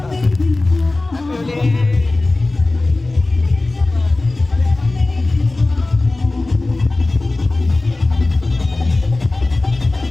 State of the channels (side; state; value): right; quieter; 3.0 dB